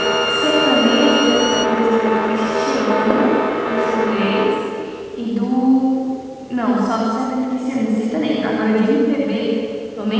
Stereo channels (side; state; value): both; identical; correlation 1.00